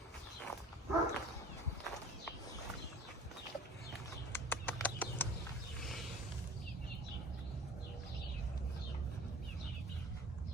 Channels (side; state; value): both; normal; correlation 0.43